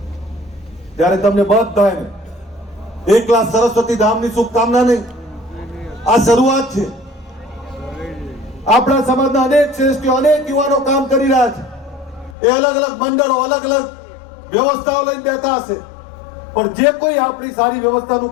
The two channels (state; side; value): drops out; right; at 12.4 s